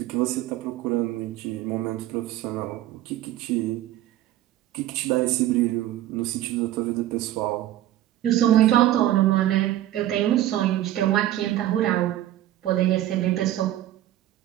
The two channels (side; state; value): left; quieter; 13.7 dB